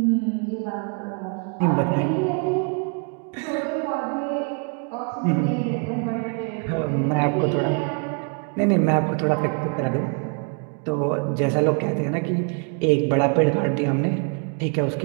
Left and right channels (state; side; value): quieter; left; 39.0 dB